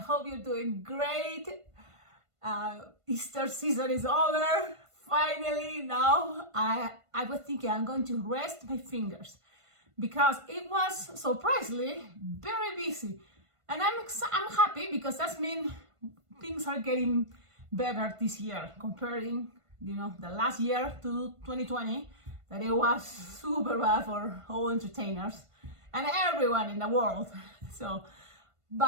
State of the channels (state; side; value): late; left; 1.5 ms